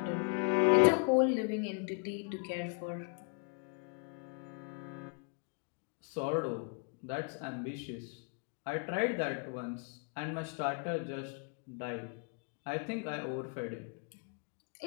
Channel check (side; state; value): right; quieter; 35.2 dB